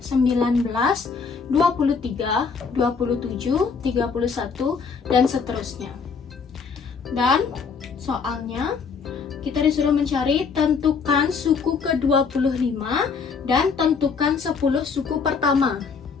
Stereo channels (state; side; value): quieter; right; 5.5 dB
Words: 19, 23, 27, 31, dan seterusnya. Dan soalnya kita disuruh mencari tentukan suku ke-25 dan tentukan 10 suku pertama.